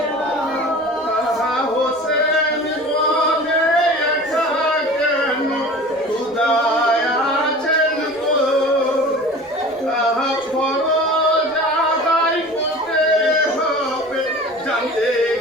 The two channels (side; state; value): both; normal; correlation 0.39